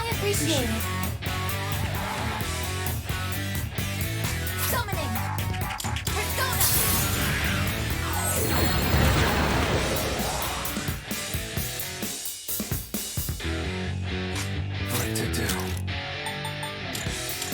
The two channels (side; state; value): both; identical; correlation 1.00